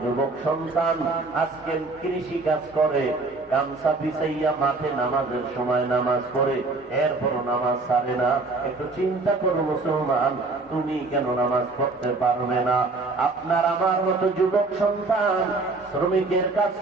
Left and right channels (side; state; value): left; quieter; 3.6 dB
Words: যুবক সন্তান আজকে কৃষি কাজ করে, গামছা বিছাইয়া মাঠে নামাজের সময় নামাজ পড়ে, এরপরও নামাজ ছাড়ে না। একটু চিন্তা করো মুসলমান, তুমি কেন নামাজ পড়তে পারবে না? আপনার আমার মতো যুবক সন্তান শ্রমিকের কাজ